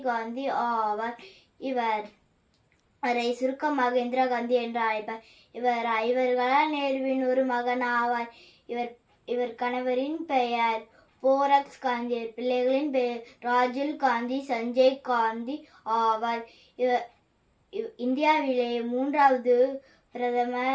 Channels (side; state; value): both; identical; correlation 1.00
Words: காந்தி ஆவார். இவரை சுருக்கமாக இந்திரா காந்தி என்று அழைப்பார். இவர் ஐவர்களால் நேருவின் ஒரு மகன் ஆவார். இவர் கணவரின் பெயர் போரக்ஸ் காந்தி. பிள்ளைகளின் பெயர் ராஜுல் காந்தி, சஞ்சய் காந்தி ஆவார். இந்தியாவிலே 3வது